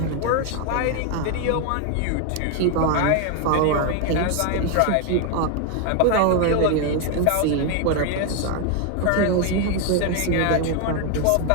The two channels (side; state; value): both; different; correlation 0.01